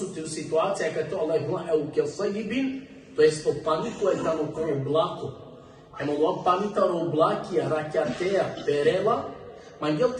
ti u situacija kad to Allah ima evo kev sajibin, to jest to paniko je tamo ko oblako. Ema ova panitaro oblakija, rakjateja, perela, Mangel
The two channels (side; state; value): both; identical; correlation 1.00